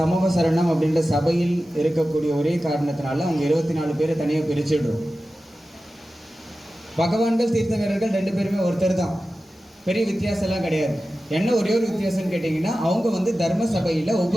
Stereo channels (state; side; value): normal; both; correlation 0.94